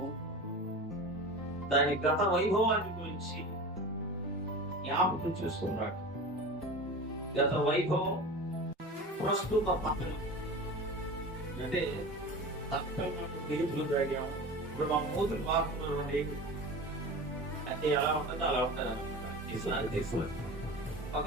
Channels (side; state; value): both; normal; correlation 0.32